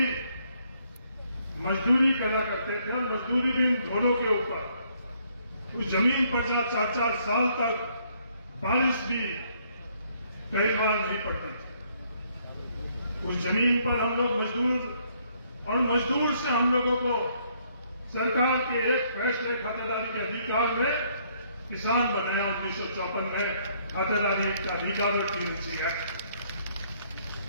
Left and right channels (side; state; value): both; inverted; correlation -0.68